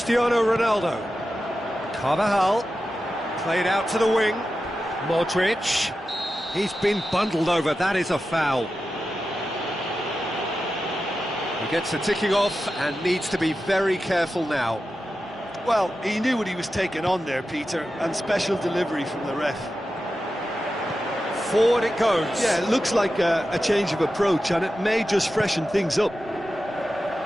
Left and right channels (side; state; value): both; normal; correlation 0.92